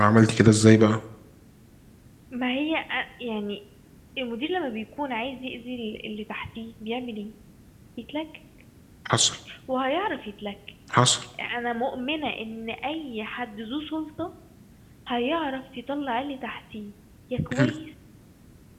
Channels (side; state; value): both; identical; correlation 1.00